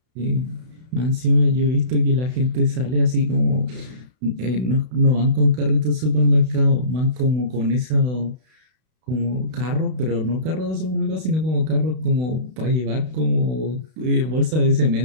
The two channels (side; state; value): left; late; 32 ms